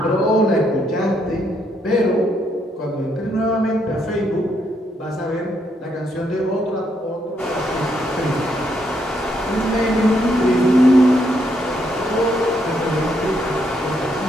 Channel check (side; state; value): both; normal; correlation 0.75